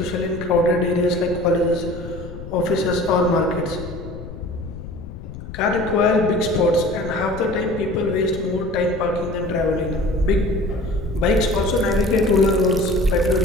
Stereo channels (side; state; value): left; noise; rumble, 12 dB below the sound